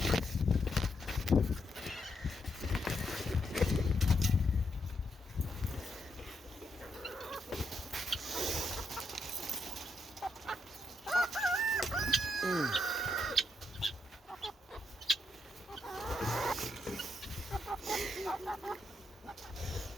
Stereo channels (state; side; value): normal; both; correlation 0.80